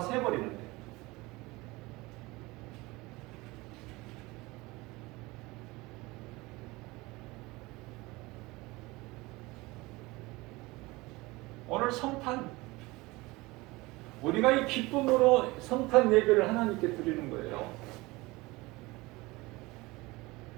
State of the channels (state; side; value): quieter; left; 22.1 dB